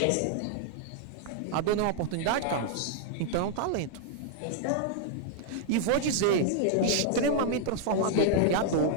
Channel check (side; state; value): both; different; correlation 0.00